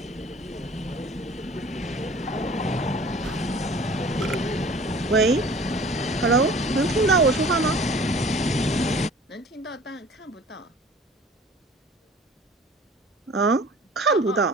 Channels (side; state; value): both; normal; correlation 0.47